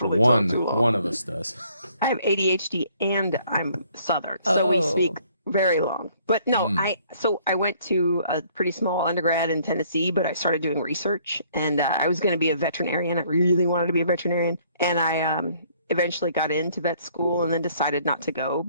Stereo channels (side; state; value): both; inverted; correlation -0.62